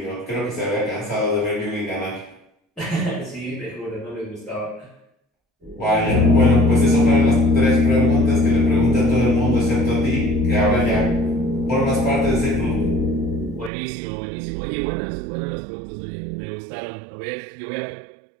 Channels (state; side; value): drops out; left; at 13.7 s